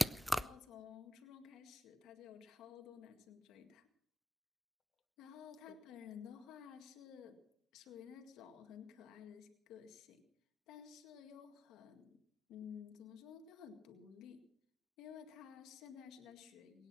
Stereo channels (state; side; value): normal; both; correlation 0.90